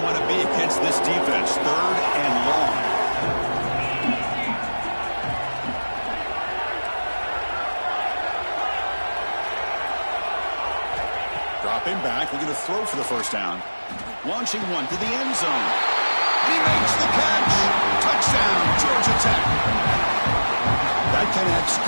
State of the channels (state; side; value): inverted; both; correlation -1.00